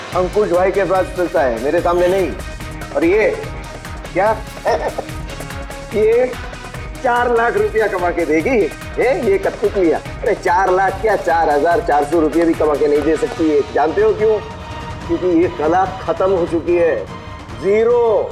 भाई के पास चलता है, मेरे सामने नहीं। और ये क्या ये 4 लाख रुपया कमा के देगी ये कठपुतलियां। अरे 4 लाख क्या, 4,400 रुपये भी कमा के नहीं दे सकती है। जानते हो क्यों? क्योंकि ये कला खत्म हो चुकी है, जीरो।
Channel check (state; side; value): identical; both; correlation 1.00